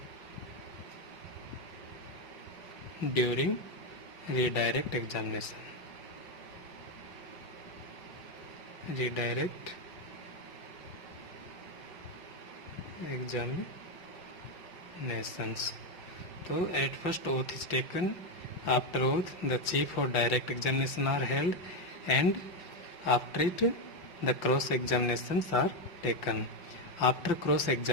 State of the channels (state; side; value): late; right; 5.4 ms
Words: during redirect examination. Redirect examinations. So at first oath is taken. After oath, the chief or direct examination are held, and after it, the cross examinations are taken. After cross